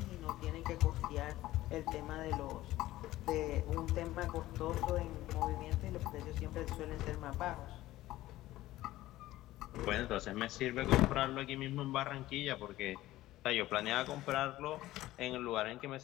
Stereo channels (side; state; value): right; quieter; 16.0 dB